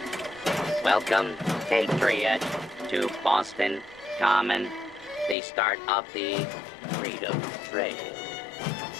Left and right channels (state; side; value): drops out; right; at 5.4 s